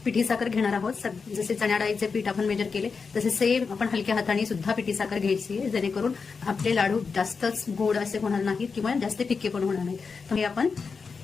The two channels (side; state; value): right; quieter; 5.1 dB